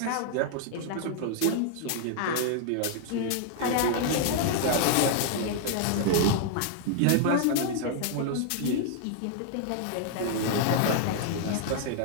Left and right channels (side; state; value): both; different; correlation 0.00